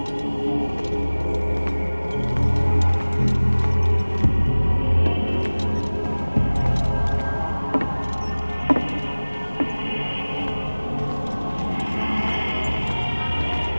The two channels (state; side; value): inverted; both; correlation -1.00